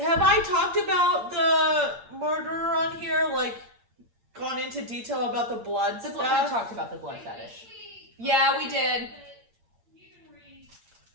I talked about the murderer on here? Like, gone into into detail about the blood We stuff? talked about the blood fetish. Yeah, we did.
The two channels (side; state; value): left; late; 8.7 ms